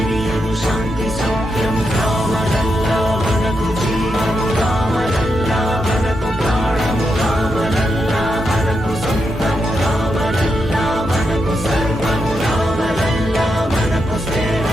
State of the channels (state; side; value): normal; both; correlation 0.84